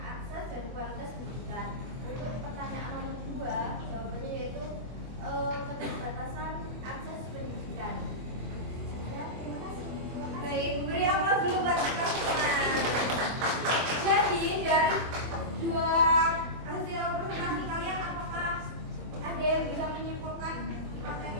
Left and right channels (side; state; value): left; late; 24 ms